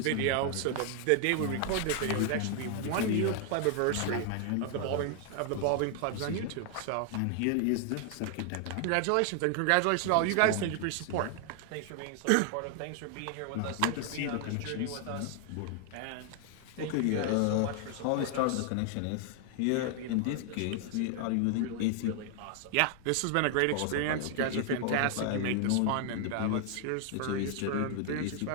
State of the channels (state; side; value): different; both; correlation 0.00